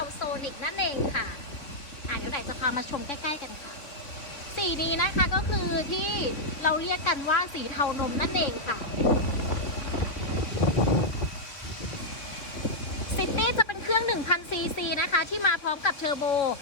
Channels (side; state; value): right; late; 3.4 ms